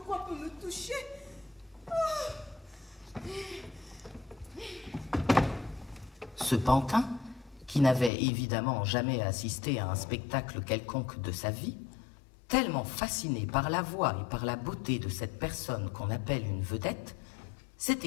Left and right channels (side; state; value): right; drops out; at 8.1 s